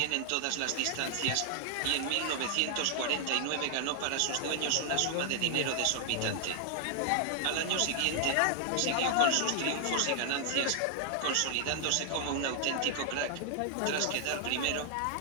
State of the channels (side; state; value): both; different; correlation 0.00